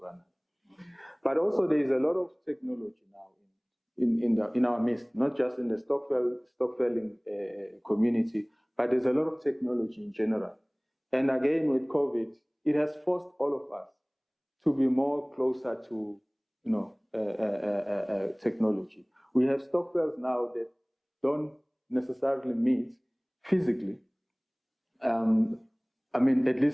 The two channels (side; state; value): both; identical; correlation 1.00